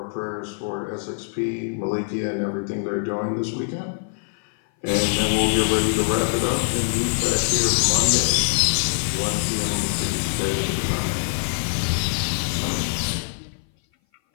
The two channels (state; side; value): silent; right; 57 dB below the other